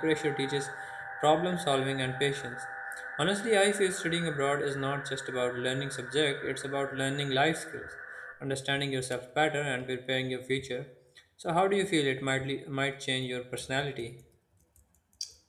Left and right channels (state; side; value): identical; both; correlation 1.00